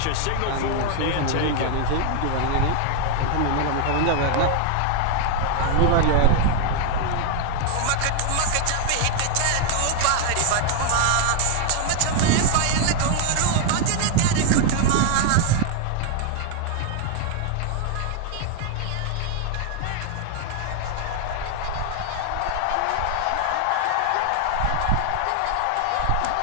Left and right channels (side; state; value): both; different; correlation 0.00